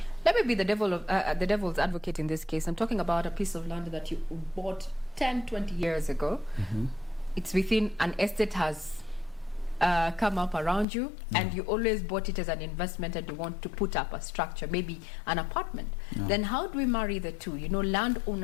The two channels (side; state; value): right; drops out; at 10.9 s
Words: Let me be the devil's advocate in this case. I'm talking about a piece of land that you bought 10, 20 years ago. It's within an estate has come up around you, and you always bought it as an investment, and you want to put up a structure, maybe an apartment. Then how do we marry the two? Land